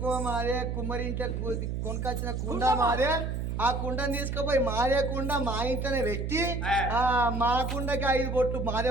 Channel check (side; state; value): right; noise; hum, 2 dB below the sound